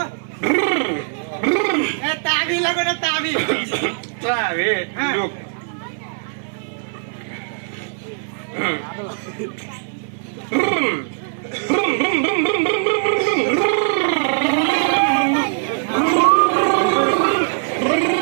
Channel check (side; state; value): left; silent; digital silence